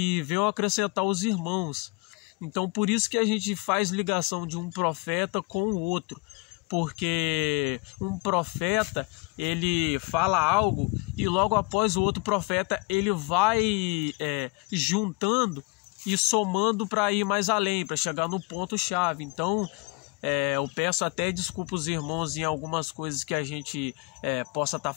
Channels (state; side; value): quieter; right; 26.4 dB